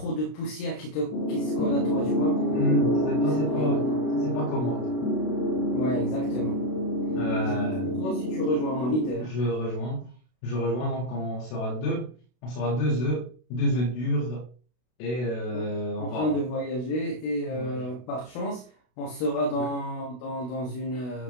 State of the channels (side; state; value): right; late; 32 ms